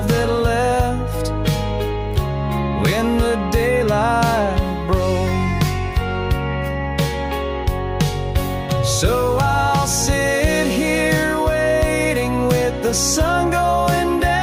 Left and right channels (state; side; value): identical; both; correlation 1.00